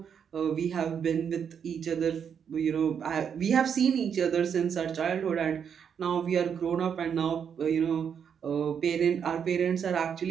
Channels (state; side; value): quieter; left; 7.5 dB